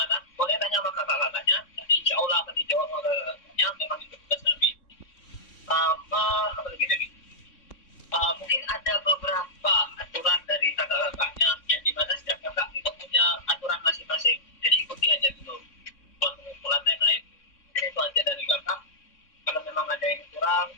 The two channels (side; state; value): right; late; 3.6 ms